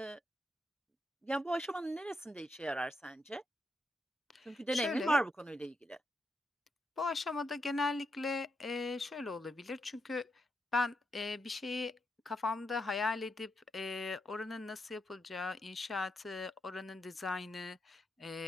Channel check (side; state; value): both; normal; correlation 0.82